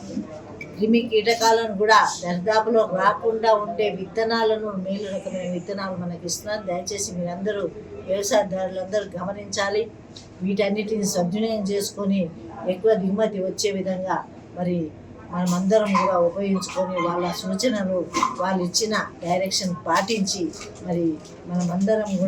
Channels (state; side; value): identical; both; correlation 1.00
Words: క్రిమి కీటకాలను కూడా దరిదాపులో రాకుండా ఉండే విత్తనాలను, మేలు రకమైన విత్తనాలు మనకి ఇస్తున్నారు। దయచేసి మీరందరూ వ్యవసాయదారులందరూ గమనించాలి, వీటన్నిటిని సద్వినియోగం చేసుకొని ఎక్కువ దిగుమతి వచ్చే విధంగా మరి మనమందరం కూడా ఉపయోగించుకొని, వాళ్ళ సూచనలు, వాళ్ళు ఇచ్చిన డైరెక్షన్ పాటించి మరి మనమందరం